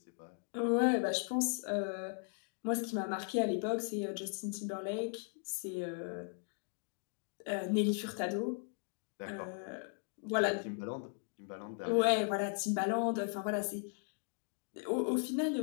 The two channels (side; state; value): right; silent; 53 dB below the other